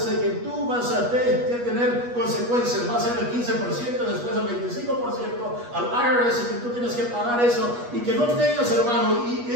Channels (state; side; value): late; left; 8.3 ms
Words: de que tú vas a tener consecuencias, va a ser el 15%, después el 25% al IRS, y que tú tienes que pagar eso, y que no tengas, hermano, y